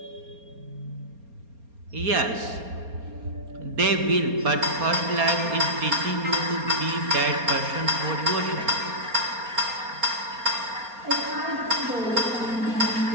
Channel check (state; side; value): late; left; 4.3 ms